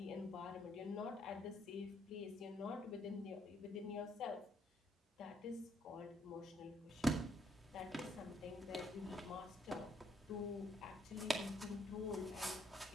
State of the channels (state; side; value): normal; both; correlation 0.71